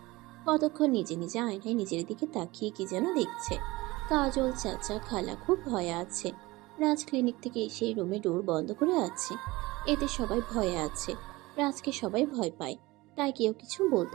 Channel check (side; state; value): left; quieter; 20.8 dB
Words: কতক্ষণ নিজে নিজে আয়নায় নিজের দিকে তাকিয়ে কি যেন দেখছে। কাজল, চাচা, খালা খুব ভয়ে আছে। রাজ ক্লিনিক থেকে এসে রুমে ডোর বন্ধ করে আছে। এতে সবাই ভয়ে আছে। রাজকে সবাই ভয় পায়, তাই কেউ কিছু